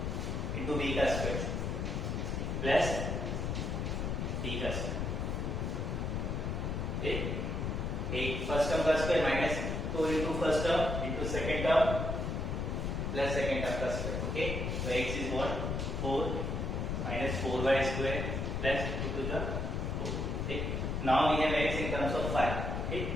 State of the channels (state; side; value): noise; left; rumble, 1 dB below the sound